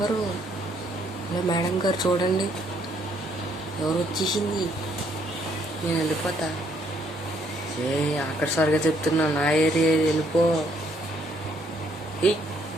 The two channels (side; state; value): both; normal; correlation 0.69